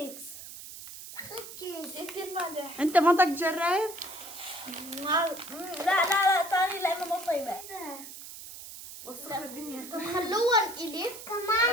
كثير مالح. انت ما بدك تجرب؟ لا تاني لأنه مو طيبة. وسخ الدنيا. طب خلوها إلي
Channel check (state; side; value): noise; right; hiss, 13 dB below the sound